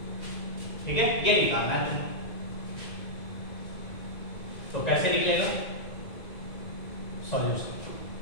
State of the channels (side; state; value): right; late; 2.1 ms